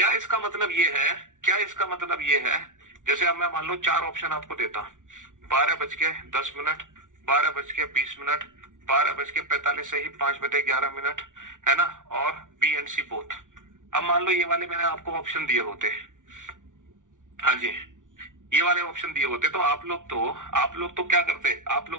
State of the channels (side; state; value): left; late; 0.87 ms